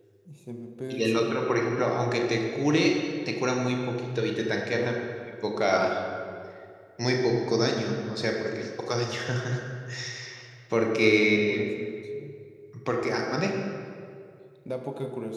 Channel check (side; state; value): both; identical; correlation 1.00